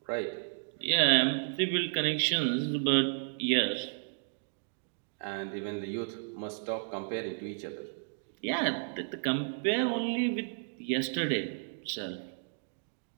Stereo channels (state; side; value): silent; left; digital silence